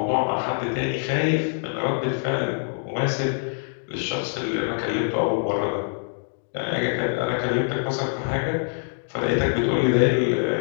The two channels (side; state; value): right; silent; digital silence